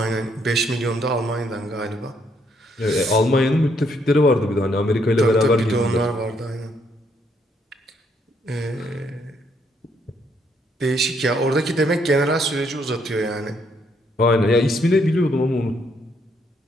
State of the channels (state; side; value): normal; both; correlation 0.72